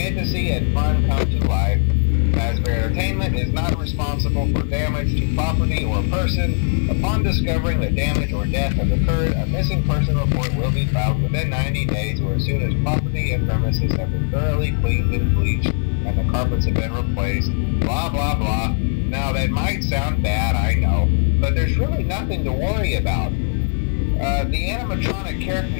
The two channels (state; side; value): silent; right; digital silence